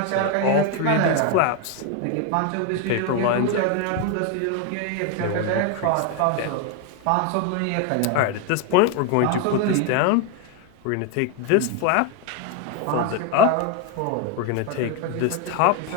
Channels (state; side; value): different; both; correlation 0.01